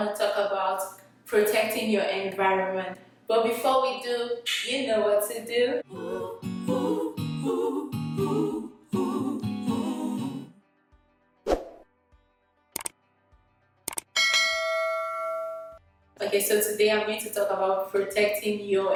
to talk about protecting your environment. But before we do, you know what to do. Okay, so today I'm going to talk about protecting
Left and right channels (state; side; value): identical; both; correlation 1.00